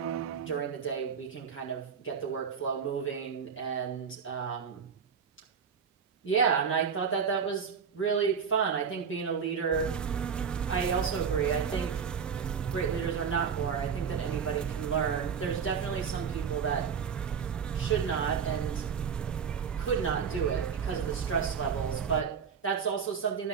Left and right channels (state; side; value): quieter; left; 6.6 dB